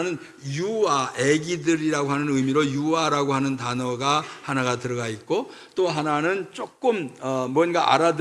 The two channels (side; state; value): both; identical; correlation 1.00